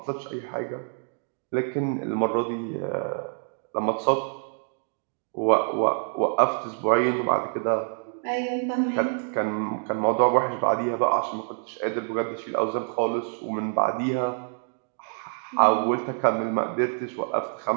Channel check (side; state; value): left; silent; 61 dB below the other